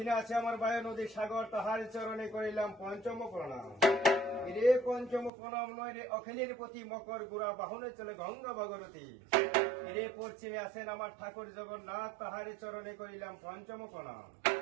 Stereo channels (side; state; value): left; drops out; at 5.3 s